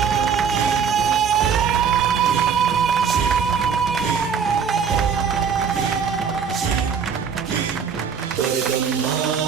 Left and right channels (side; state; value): left; quieter; 6.8 dB